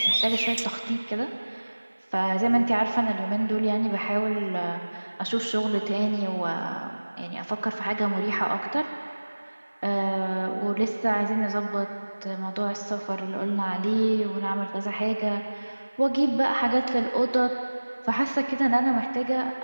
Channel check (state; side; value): inverted; both; correlation -1.00